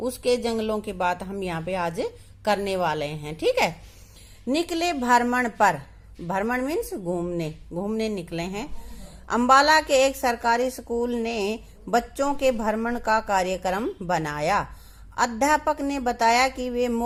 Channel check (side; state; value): both; identical; correlation 1.00